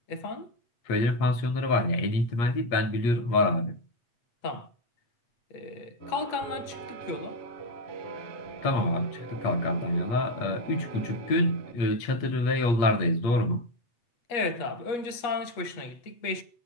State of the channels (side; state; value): right; late; 8.3 ms